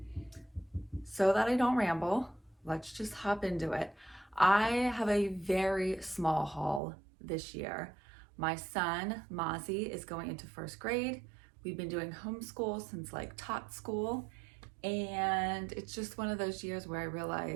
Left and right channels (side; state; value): left; drops out; at 6.8 s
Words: So that I don't ramble, let's just hop into it. I have a very small haul this year. My son, Mozzie, is going into first grade. We've been doing homeschool since like tot school. And it's just one of those years where I